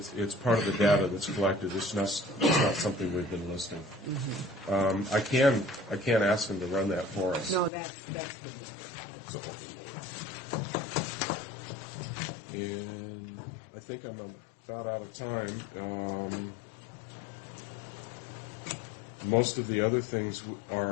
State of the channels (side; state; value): right; drops out; at 7.7 s